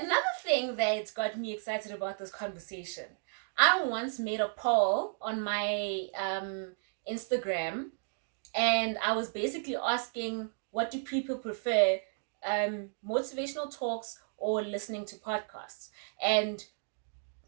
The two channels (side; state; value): left; silent; digital silence